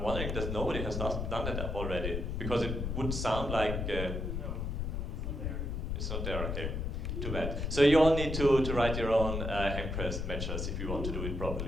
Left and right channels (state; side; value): noise; left; rumble, 2 dB below the sound